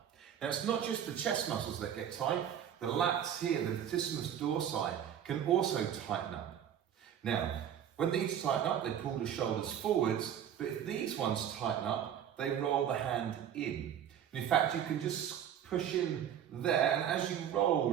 Now it's not just the chest muscles that get tight, the lats here, the Latissimus Dorsi, can also tighten up. Now, when these tighten up, they pull the shoulders forwards, but if these ones tighten up, they roll the hand in. And in fact, you can just push in there, and as you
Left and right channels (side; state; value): left; quieter; 9.5 dB